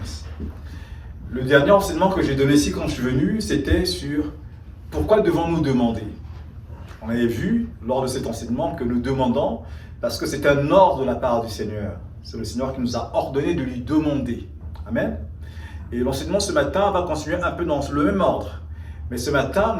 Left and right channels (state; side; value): identical; both; correlation 1.00